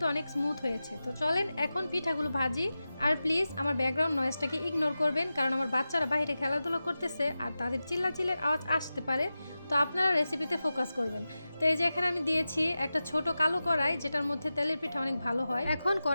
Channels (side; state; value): both; inverted; correlation -0.94